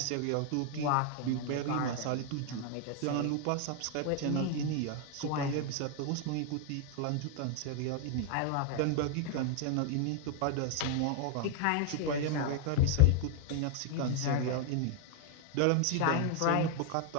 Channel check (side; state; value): both; different; correlation 0.00